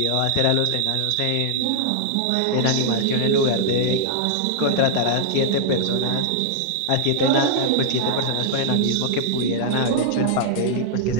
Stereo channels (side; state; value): both; different; correlation -0.01